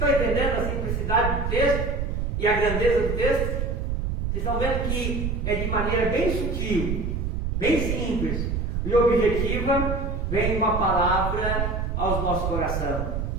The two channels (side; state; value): right; noise; rumble, 1 dB below the sound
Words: estão entendendo a simplicidade do texto e a grandeza do texto? Vocês estão vendo que é de maneira bem sutil, bem simples e objetiva, vem uma palavra aos nossos corações.